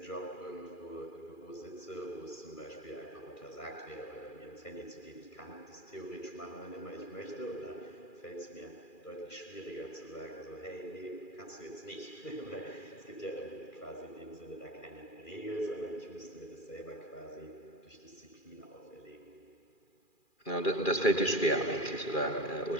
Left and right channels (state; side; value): late; right; 2.4 ms